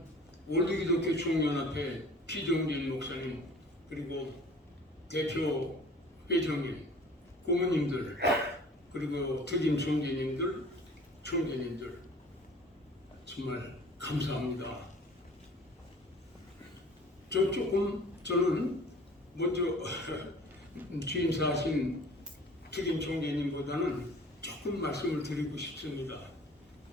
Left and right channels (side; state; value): both; normal; correlation 0.47